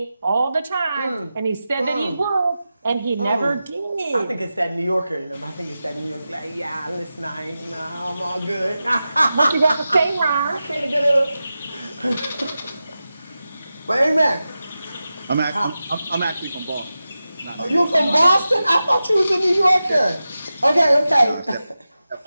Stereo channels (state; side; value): inverted; both; correlation -0.93